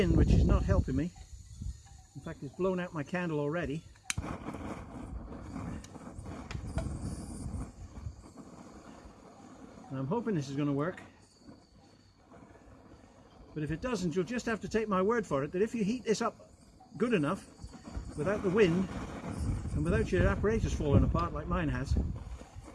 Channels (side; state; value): both; identical; correlation 1.00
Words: which is not helping me. In fact, it's blown out my candle already. And I'm hoping this is going to work. But if it doesn't, you'll just have to take my word for it that if you heat this up good enough, without the wind and without your apparatus falling apart like mine has,